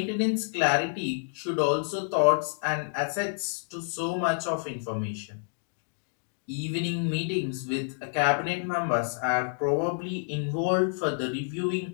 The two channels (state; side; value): silent; right; digital silence